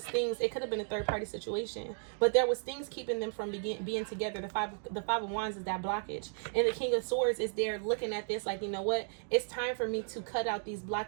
things. It could have been a third-party situation, but there was things keeping them from being together. The five of Wands is that blockage, and the King of Swords is there looking at this like, you know what? It's time for me to cut out these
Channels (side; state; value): left; silent; 55 dB below the other